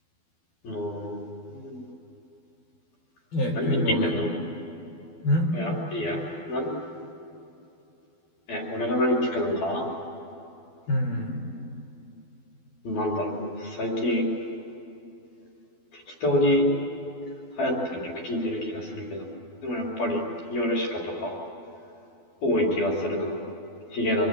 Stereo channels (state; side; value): late; right; 12 ms